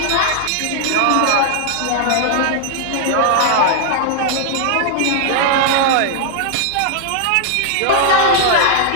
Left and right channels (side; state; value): both; different; correlation -0.01